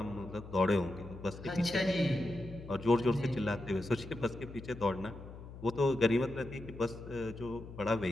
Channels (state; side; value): noise; left; hum, 14 dB below the sound